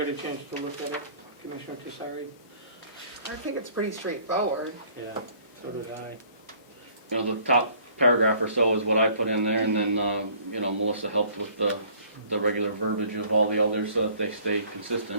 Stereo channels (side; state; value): both; inverted; correlation -0.56